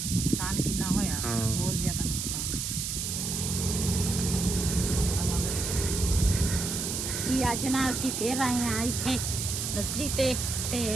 कितना होया, बहुत ज़्यादा नुकसान। जी अज ना असी फिर आए हैं इत्थे नर्सरी ते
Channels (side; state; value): right; noise; hiss, 2 dB below the sound